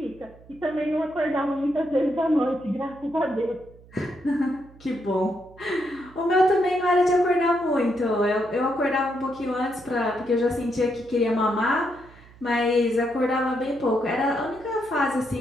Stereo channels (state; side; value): noise; right; hum, 23 dB below the sound